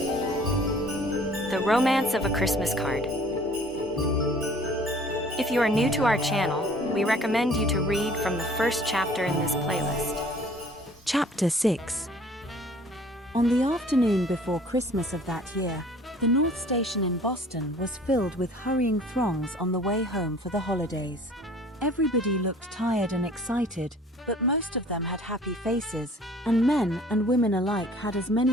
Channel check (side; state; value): both; normal; correlation 0.52